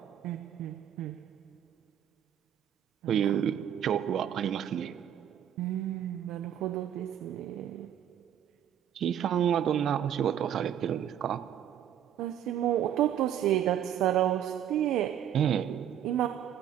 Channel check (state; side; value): quieter; left; 10.1 dB